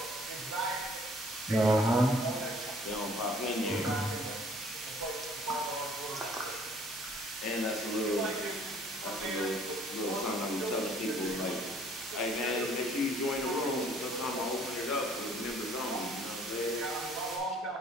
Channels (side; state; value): both; normal; correlation 0.57